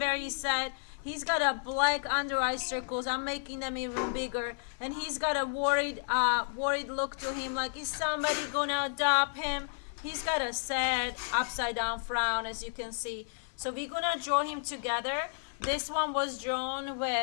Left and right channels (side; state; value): right; silent; 56 dB below the other